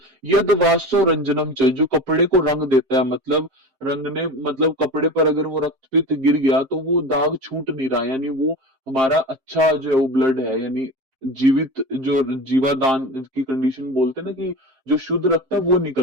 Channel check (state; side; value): late; left; 7.5 ms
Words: यद वाष्यो रंजनम च, जो कपड़े को रंग देता है, मतलब रंगने, मतलब कपड़े पर अगर वो रक्तपित गिर गया तो वो दाग छूट नहीं रहा, यानी वो हमारा अच्छा जो है वो ब्लड है, यानी जीवित जो जीवादान की कंडीशन बोलते हैं ना, कि जो शुद्ध रक्त है वो